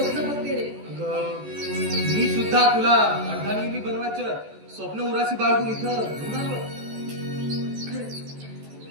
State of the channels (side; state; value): left; late; 14 ms